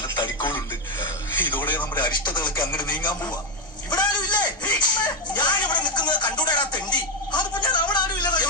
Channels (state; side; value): normal; both; correlation 0.08